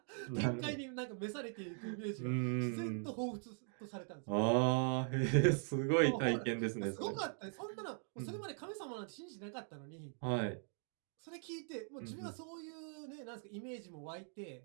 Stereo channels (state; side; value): silent; left; 50 dB below the other